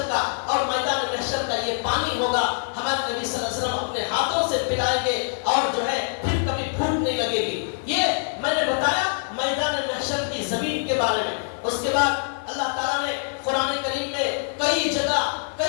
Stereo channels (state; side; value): silent; right; digital silence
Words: کا اور میدان محشر کا یہ پانی ہوگا، ہمارے نبی صلی اللہ علیہ وسلم اپنے ہاتھوں سے پلائیں گے اور جو ہے پھر کبھی بھوک نہیں لگے گی۔ یہ میں نے بتایا میدان محشر کی زمین کے بارے میں۔ اس کے بعد اللہ تعالیٰ نے قرآن کریم میں کئی